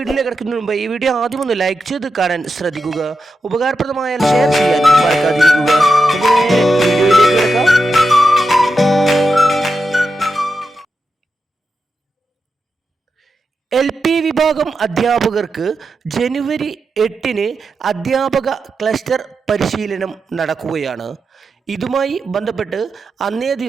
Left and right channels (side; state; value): both; normal; correlation 0.88